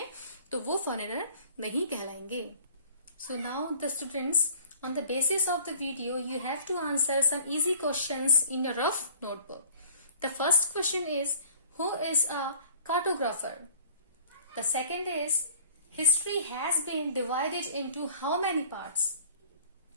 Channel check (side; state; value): both; inverted; correlation -0.50